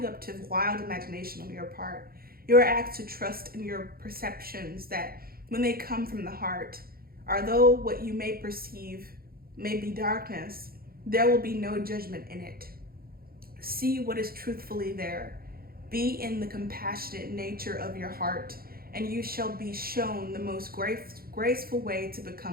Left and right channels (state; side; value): late; left; 0.43 ms